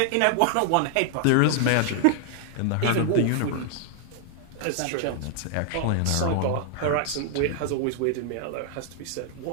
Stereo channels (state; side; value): different; both; correlation 0.00